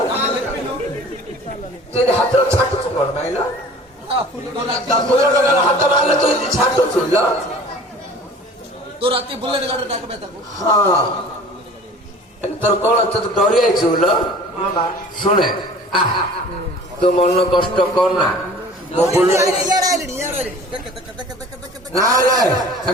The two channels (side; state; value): both; normal; correlation 0.45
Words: ତୁ ହାତର ଛାଟୁଛୁ କଣ ପାଇଲ ହାତ ମାରିଲେ ତୁ ଛାଟୁଛୁ ତୁ ରାତି ବୁଲେଟ ଗାଡି ଡାକବେ ତାକୁ ହଁ তোর কোন তো ডরি আইছু লো শুনে তো মন কষ্ট কর না মো বলু না না